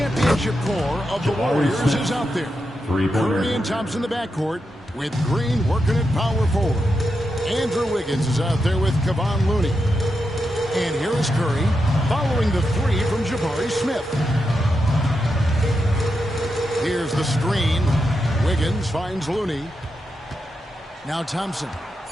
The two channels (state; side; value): normal; both; correlation 0.86